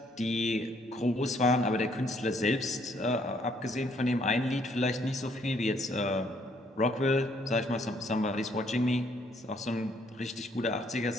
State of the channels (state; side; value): normal; both; correlation 0.67